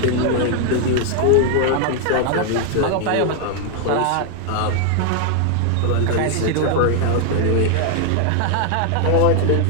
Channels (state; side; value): different; both; correlation 0.00